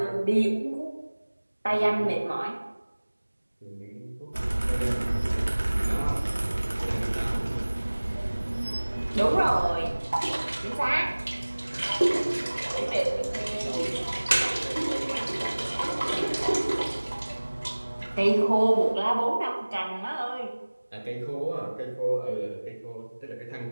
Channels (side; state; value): both; inverted; correlation -1.00